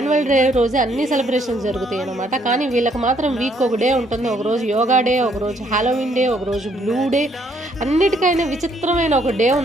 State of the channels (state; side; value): normal; both; correlation 0.68